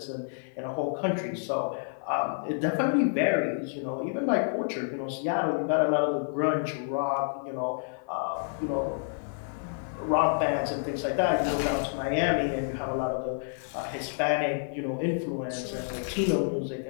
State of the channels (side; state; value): right; silent; 58 dB below the other